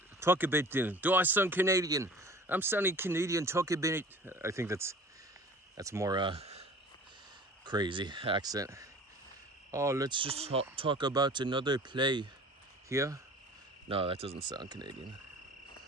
Do I sound Canadian? I'm sounding Canadian. Talk a bit. I think that's more crazy accent. Oh, let's just talk about another play here. No, that doesn't sound Canadian.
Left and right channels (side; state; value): both; normal; correlation 0.44